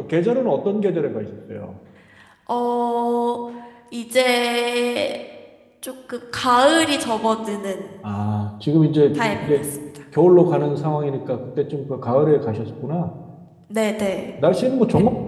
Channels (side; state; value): both; identical; correlation 1.00